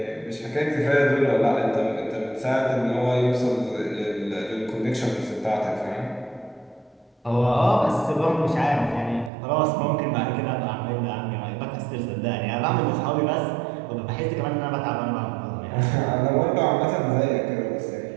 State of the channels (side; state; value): left; drops out; at 9.3 s